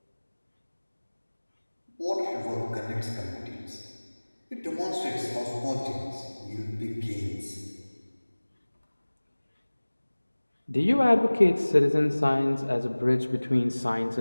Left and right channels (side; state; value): both; inverted; correlation -1.00